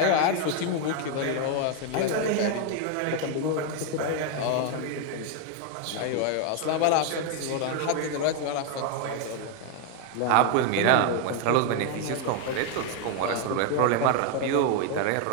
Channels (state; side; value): different; both; correlation 0.01